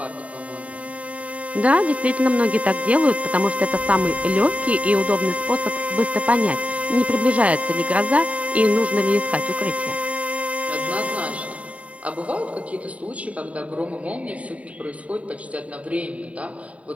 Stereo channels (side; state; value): left; late; 0.066 ms